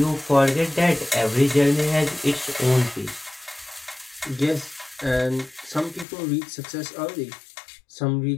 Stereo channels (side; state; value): right; drops out; at 6.1 s